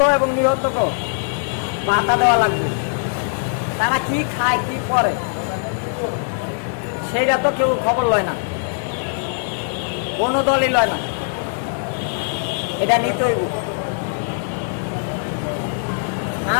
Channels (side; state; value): right; silent; digital silence